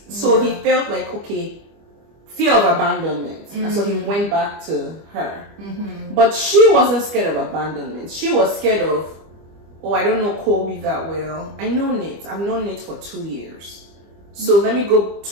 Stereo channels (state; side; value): late; left; 25 ms